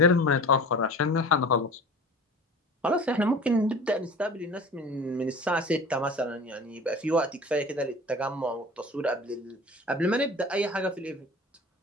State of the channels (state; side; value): normal; both; correlation 0.39